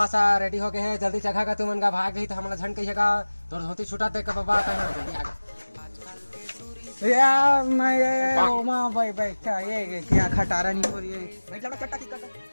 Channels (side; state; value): both; inverted; correlation -1.00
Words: रेडी हो गए है, जल्दी जगह का तुमन का भाग गई तो हमला झन कहिएगा तोर धोती छुटा दे के बाबा कहां जल्दी आ यार मैं ओमा भाई क्या ये क्या खटारा नहीं हो रही है। बैठ जा चट्टा